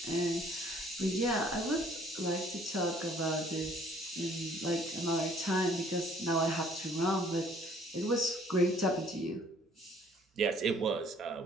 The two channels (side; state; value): both; normal; correlation 0.58